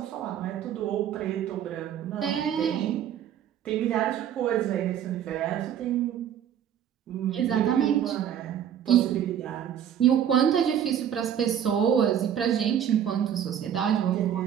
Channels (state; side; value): quieter; left; 9.6 dB